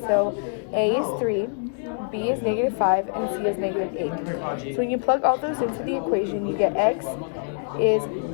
So a is 3, b is negative 5, and c is negative 8. So when you plug all those into the equation, you get x is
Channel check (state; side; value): silent; right; digital silence